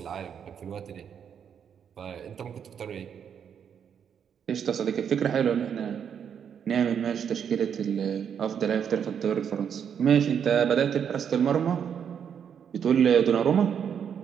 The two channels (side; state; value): left; quieter; 7.9 dB